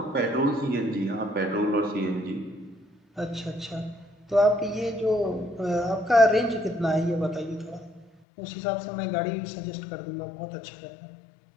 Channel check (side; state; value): right; drops out; at 8.1 s